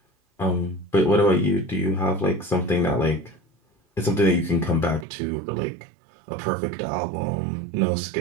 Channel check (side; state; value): left; drops out; at 5.1 s